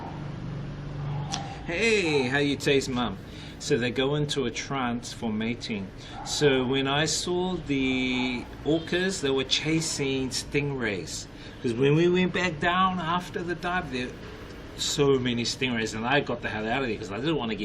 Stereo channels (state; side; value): identical; both; correlation 1.00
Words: Hey, how you taste, Mum? So they go into a trance for mating. So when I saw the orcas, they were chasing stingrays. Because when we went back down after the dive, there so many stingrays, and I got the hell out of there because I didn't want to